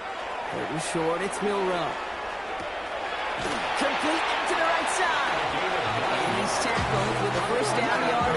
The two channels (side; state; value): both; identical; correlation 1.00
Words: and short, it's Milroe. Complete out to the right side. And he's tackled with the first down